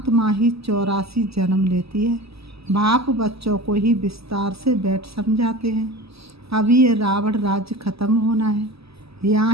ही 84 जन्म लेती है। बाप बच्चों को ही विस्तार से बैठ समझाते हैं। अभी ये रावण राज्य खत्म होना है। यहाँ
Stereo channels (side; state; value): left; late; 0.77 ms